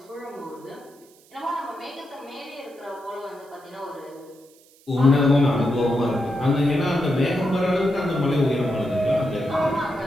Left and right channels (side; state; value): right; noise; hiss, 28 dB below the sound